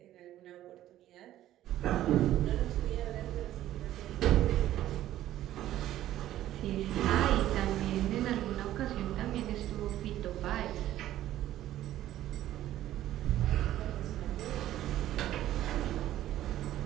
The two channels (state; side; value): quieter; left; 13.3 dB